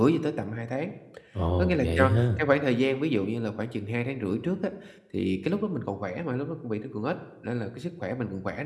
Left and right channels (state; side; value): identical; both; correlation 1.00